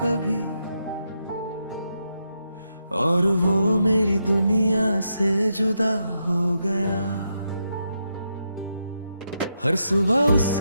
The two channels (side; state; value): both; inverted; correlation -0.83